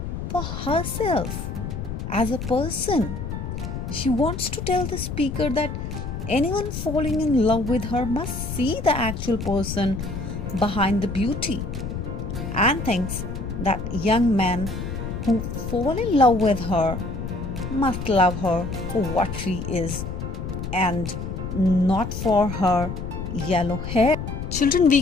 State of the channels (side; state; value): left; noise; rumble, 6 dB below the sound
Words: for herself as a person. She wants to tell the speaker that anyone falling in love with her must see the actual person behind the beauty, and thinks that young men who fall in love with her must love her for what she is and not for her yellow hair. Children, we